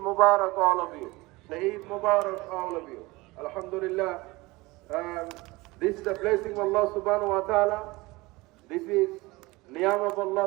Mubarak all of you. The Eid Mubarak all of you. Alhamdulillah. This is the blessing of Allah subhanahu wa ta'ala. This is Niyam of Allah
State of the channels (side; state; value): left; quieter; 22.0 dB